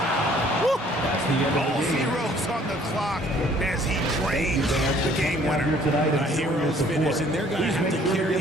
Woo! That's the end of All the game. zeros on the clock as he drains the game Here winner. tonight A hero's finish, and they're going to have to carry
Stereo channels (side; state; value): both; normal; correlation 0.58